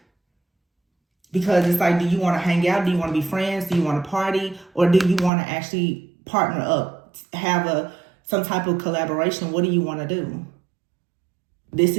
Because it's like, do you want to hang out? Do you want to be friends? Do you want to party? Or do you want to actually partner up, have some type of collaboration? What do you want to do? This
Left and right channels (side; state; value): left; drops out; at 5.3 s